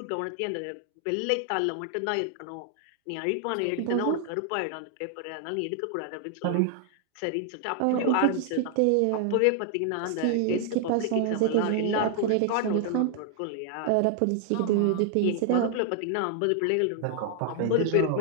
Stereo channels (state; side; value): different; both; correlation 0.00